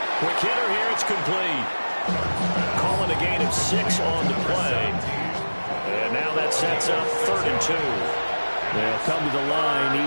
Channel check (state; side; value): inverted; both; correlation -1.00